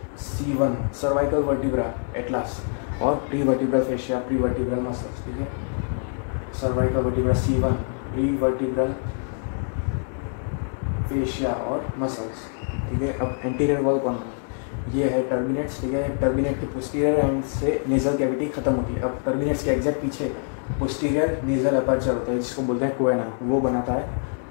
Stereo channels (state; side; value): silent; right; 58 dB below the other